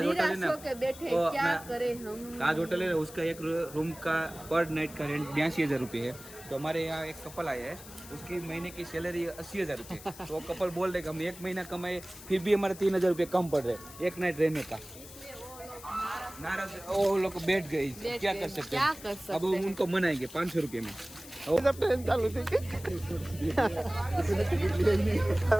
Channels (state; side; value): noise; left; hiss, 16 dB below the sound